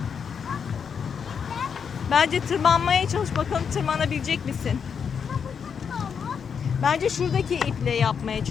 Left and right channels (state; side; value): quieter; right; 6.8 dB